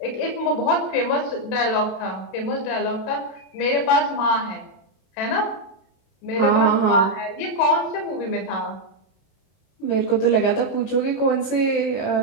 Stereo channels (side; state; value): right; late; 32 ms